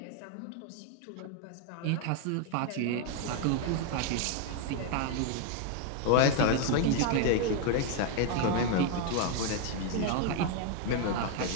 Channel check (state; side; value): different; both; correlation 0.01